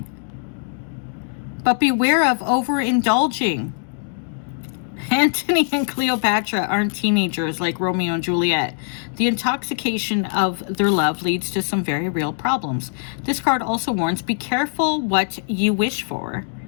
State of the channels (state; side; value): silent; right; digital silence